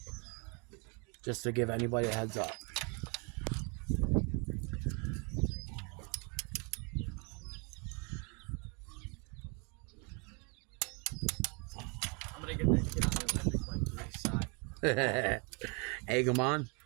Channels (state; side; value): quieter; left; 33.7 dB